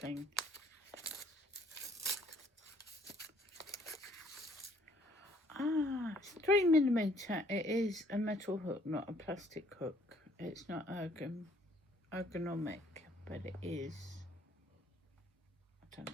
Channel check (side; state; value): both; normal; correlation 0.62